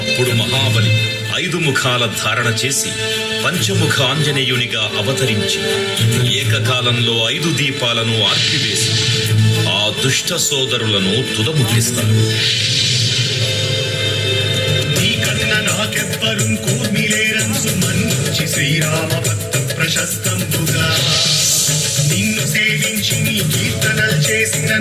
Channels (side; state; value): right; noise; hum, 30 dB below the sound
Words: మహాబలి 5 ముఖాల ధారణ చేసి పంచముఖ ఆంజనేయునిగా అవతరించి ఏకకాలంలో 5 దీపాలను ఆర్పివేసి ఆ దుష్ట సోదరులను తుదముట్టిస్తాడు. నీకన్న నాకెవ్వరు కూర్మిలేరంసు మన్నించి శ్రీరామ భక్త ప్రశస్తంబుగా నిన్ను సేవించి నీ కీర్తనలు చేసిన